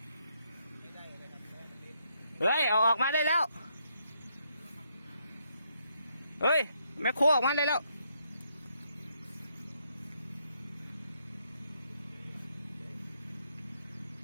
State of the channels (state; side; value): inverted; both; correlation -0.75